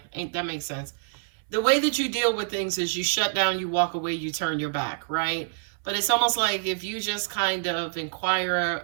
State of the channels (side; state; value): left; silent; 60 dB below the other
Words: that makes sense. The way that you deal with things is you shut down, you walk away, you turn your back, right? But it's almost like if you just kind of inquire